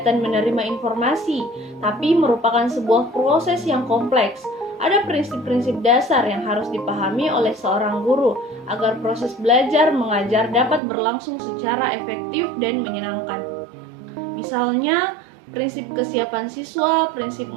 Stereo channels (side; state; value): left; drops out; at 10.8 s